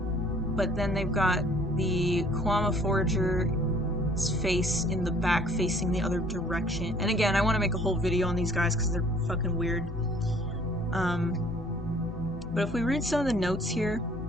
then they've got the Kwama Forager's face in the back facing the other direction. And again, I want to make a whole video on these guys because they're fucking weird. But if we read some of the notes here,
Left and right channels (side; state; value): both; normal; correlation 0.56